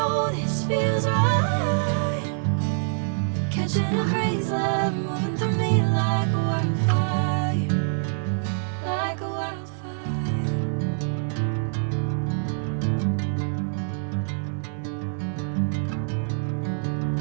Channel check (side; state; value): left; silent; 62 dB below the other